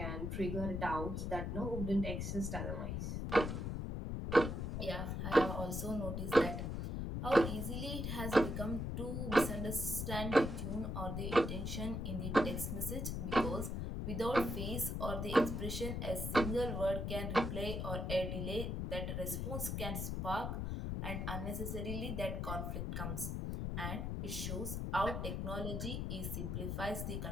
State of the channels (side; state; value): left; noise; rumble, 2 dB below the sound